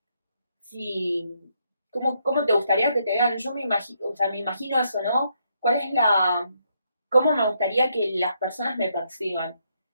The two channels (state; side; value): inverted; both; correlation -0.76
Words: si. ¿Cómo te gustaría que te vean? Yo me imagino, o sea, me imagino eso, ¿no? ¿Cuál es la. ¿Cómo me gustaría que las personas me perciban?